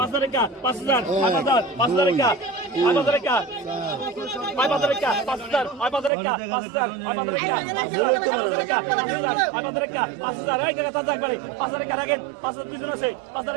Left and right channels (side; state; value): left; drops out; at 6.1 s